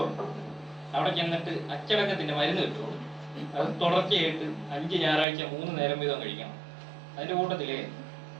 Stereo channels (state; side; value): drops out; left; at 5.2 s